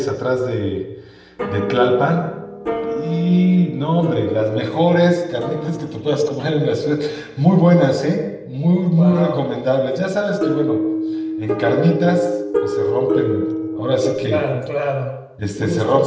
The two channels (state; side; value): identical; both; correlation 1.00